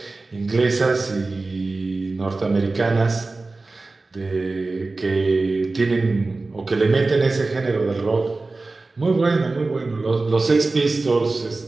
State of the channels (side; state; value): left; quieter; 3.4 dB